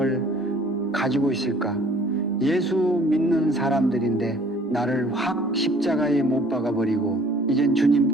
가지고 있을까? 예수 믿는 사람들인데 나를 확 십자가에 못 박아버리고 이젠 주님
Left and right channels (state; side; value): normal; both; correlation 0.54